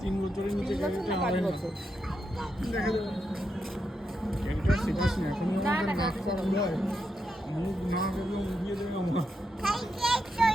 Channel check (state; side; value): normal; both; correlation 0.84